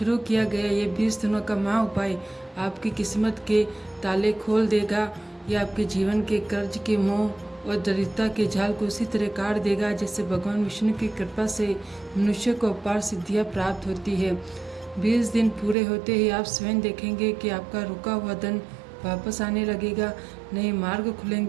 किया गया ये 20 दिनों का महा उपाय आपकी किस्मत के ताले खोल देगा। यह आपके जीवन के कर्ज के मोह और दरिद्रता के जाल को उसी तरह काट देगा जैसे भगवान विष्णु की कृपा से मनुष्य को अपार सिद्धियाँ प्राप्त होती है। 20 दिन पूरे होते ही आप स्वयं देखेंगे कि आपका रुका हुआ धन वापस आने लगेगा, नए मार्ग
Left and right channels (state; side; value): drops out; left; at 15.8 s